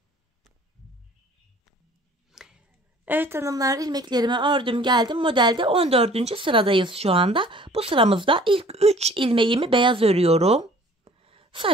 Evet hanımlar, ilmeklerimi ördüm geldim. Modelde 14. sıradayız şu anda. Bu sıramızda ilk 3 ilmeğimi beyaz örüyorum.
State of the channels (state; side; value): normal; both; correlation 0.52